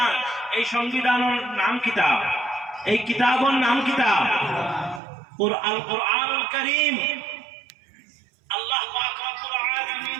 এই সংবিধানের নাম কিতাব, এই কিতাবের নাম কিতাব কুরআনুল কারীম। আল্লাহ পাক রব্বুল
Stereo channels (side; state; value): left; drops out; at 5.0 s